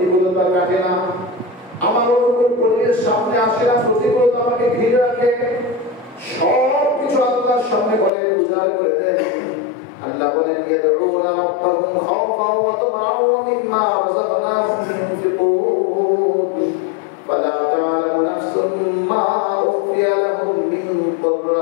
কাটে না, আমার অনুকূল পরিবেশ সামনে আসে না, প্রতিকূলতা আমাকে ঘিরে রাখে, সব কিছু আল্লাহর সামনে বলে উজাড় করে দেন। আল্লাহ বলেন ইয়াদউনা রাব্বাহুম খাওফান ওয়া তামাআন ওয়া মিম্মা রাযাকনাহুম ইউনফিকুন ফালা তা'লামু নাফসুম মা উখফিয়া লাহুম মিন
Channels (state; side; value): drops out; right; at 8.1 s